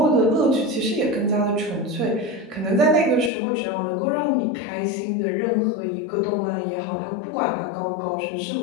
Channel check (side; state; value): right; drops out; at 3.3 s